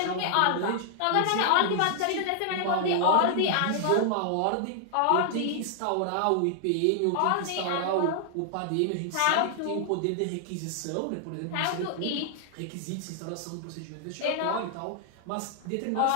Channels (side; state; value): both; different; correlation -0.01